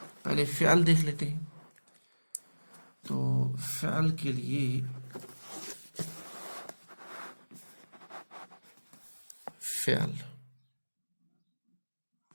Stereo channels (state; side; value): inverted; both; correlation -1.00